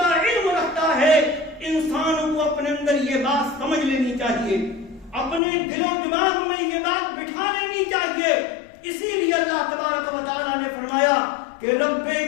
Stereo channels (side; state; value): right; drops out; at 5.4 s